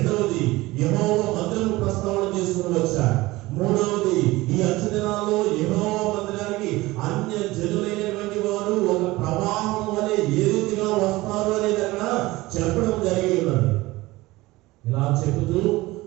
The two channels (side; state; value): left; quieter; 19.7 dB